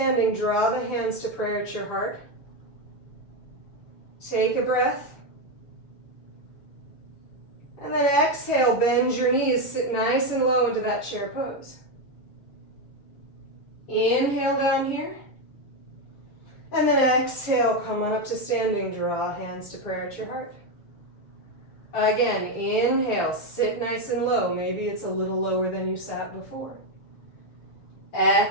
draw the hands to prayer at your heart. Take a breath. And then exhale, bend your knees, sit nice and low into that chair pose. Inhale down here. And then exhale, come on up to standing, draw hands to prayer at your heart. Again, inhale, sit nice and low. Maybe it's a little lower than you sat before.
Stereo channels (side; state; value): right; late; 6.8 ms